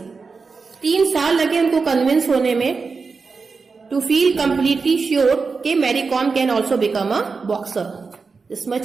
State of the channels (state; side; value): quieter; left; 4.7 dB